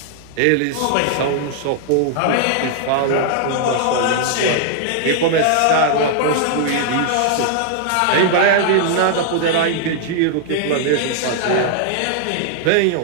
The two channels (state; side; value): different; both; correlation -0.01